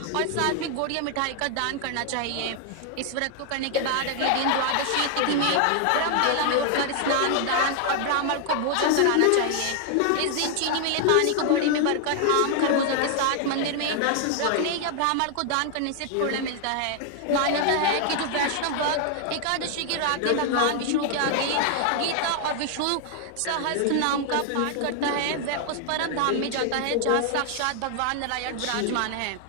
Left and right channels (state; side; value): different; both; correlation 0.00